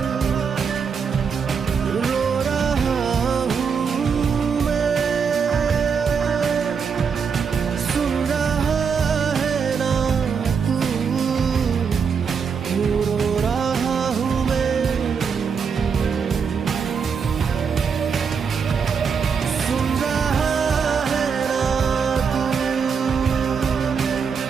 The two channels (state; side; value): quieter; left; 6.2 dB